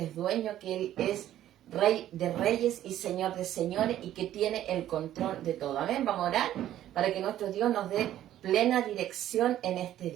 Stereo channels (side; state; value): left; quieter; 12.4 dB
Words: dueño, que Él es Rey de reyes y Señor de señores y que tiene el control de todo. Amén. Vamos a orar para que nuestro Dios nos dé plena dirección en este